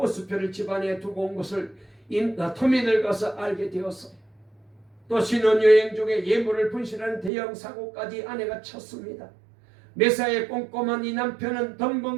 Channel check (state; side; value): drops out; left; at 7.3 s